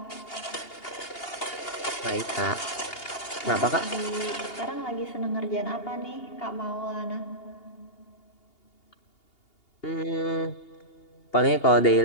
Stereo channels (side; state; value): right; late; 2.8 ms